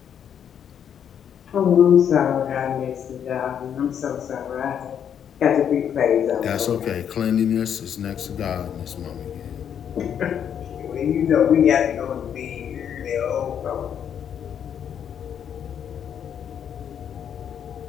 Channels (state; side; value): quieter; right; 8.7 dB